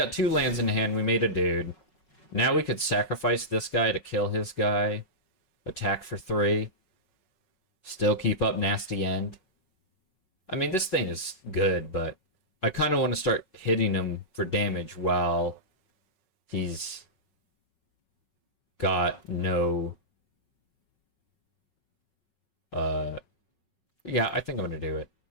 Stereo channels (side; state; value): right; late; 5.4 ms